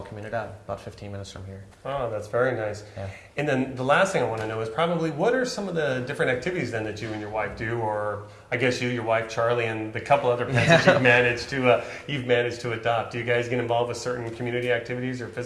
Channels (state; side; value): identical; both; correlation 1.00